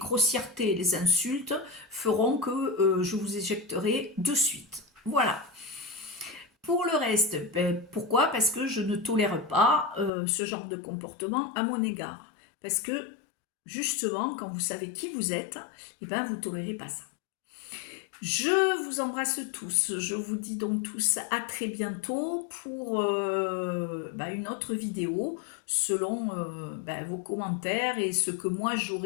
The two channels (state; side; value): drops out; right; at 10.1 s